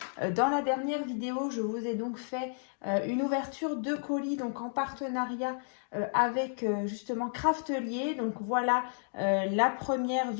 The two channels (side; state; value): right; silent; digital silence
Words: dans la dernière vidéo. Je vous ai donc fait une ouverture de colis donc en partenariat avec justement Craftelier. Donc voilà la première